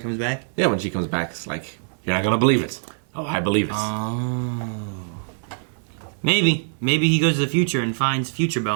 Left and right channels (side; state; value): left; silent; 57 dB below the other